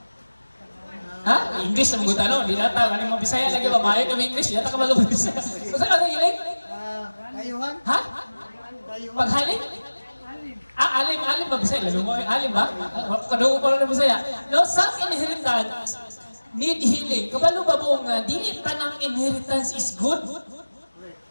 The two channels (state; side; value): inverted; both; correlation -1.00